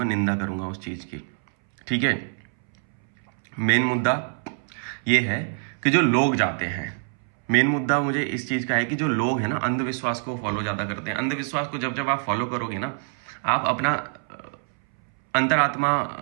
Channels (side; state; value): left; silent; 62 dB below the other